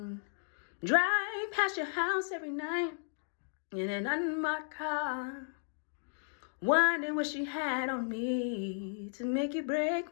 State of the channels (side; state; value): right; silent; digital silence